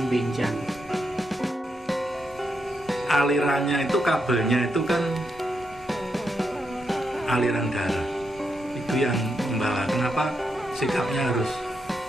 benjang. Alirannya itu, kabelnya itu kan aliran darah. Itu yang membawa. Kenapa sikapnya harus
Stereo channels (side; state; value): both; normal; correlation 0.82